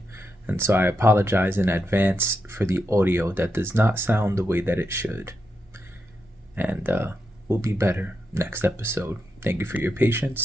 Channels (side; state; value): both; normal; correlation 0.84